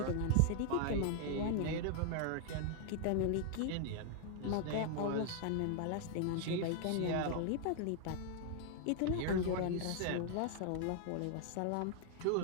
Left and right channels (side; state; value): both; different; correlation 0.00